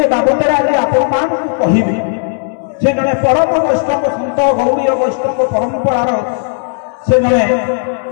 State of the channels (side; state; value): right; silent; 68 dB below the other